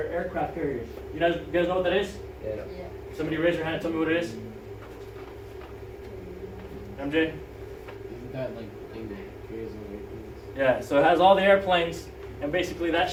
carriers. You guys know what that is? Yeah. Yeah. Somebody raise your hand and tell me what it is. MJ? Isn't that like the thing that carries over Yeah, so it has all the airplanes, and basically that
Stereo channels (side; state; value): both; identical; correlation 1.00